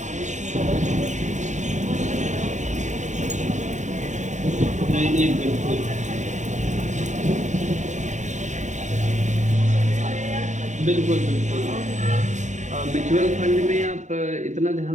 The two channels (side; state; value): left; late; 0.34 ms